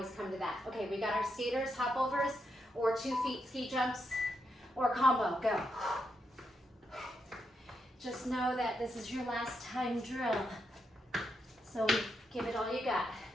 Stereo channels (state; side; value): normal; both; correlation 0.82